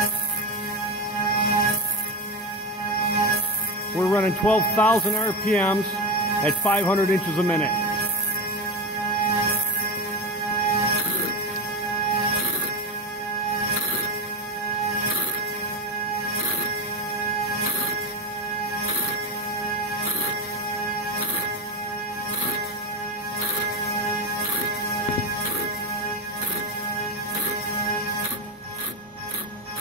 We're running 12,000 RPMs at 500 inches a minute.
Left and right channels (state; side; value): normal; both; correlation 0.17